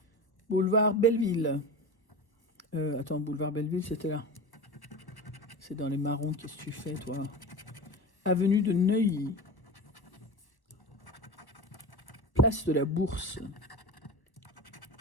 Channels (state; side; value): late; right; 1.1 ms